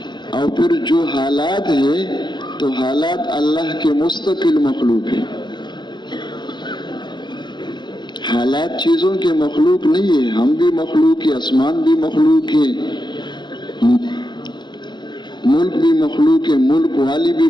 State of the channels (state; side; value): late; right; 0.21 ms